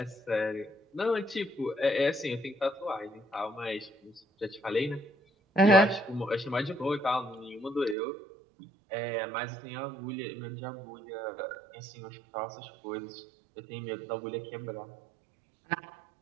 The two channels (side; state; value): left; drops out; at 8.0 s